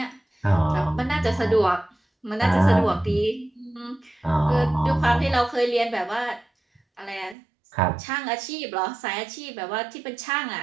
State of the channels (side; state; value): left; drops out; at 7.4 s